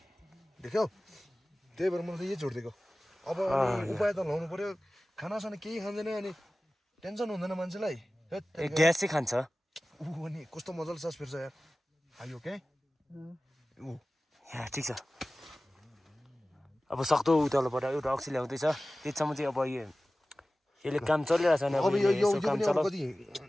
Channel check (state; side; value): normal; both; correlation 0.97